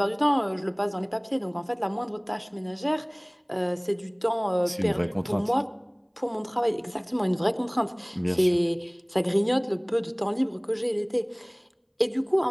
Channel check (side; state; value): both; identical; correlation 1.00